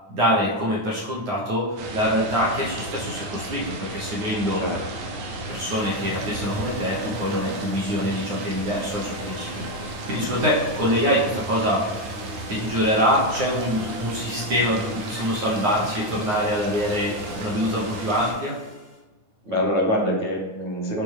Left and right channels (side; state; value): left; late; 9.6 ms